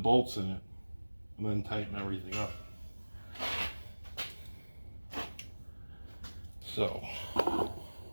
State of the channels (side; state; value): both; inverted; correlation -1.00